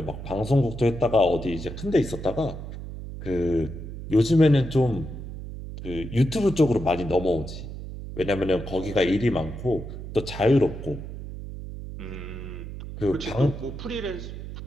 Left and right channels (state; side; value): noise; right; hum, 9 dB below the sound